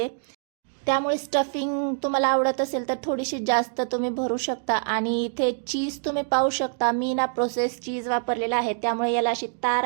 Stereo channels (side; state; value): left; silent; digital silence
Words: त्यामुळे स्टफिंग तुम्हाला आवडत असेल तर थोडीशी जास्त तुम्ही भरू शकता. आणि इथे चीज तुम्ही पाहू शकता, मी ना प्रोसेस चीज वापरलेला आहे, त्यामुळे याला अशी तार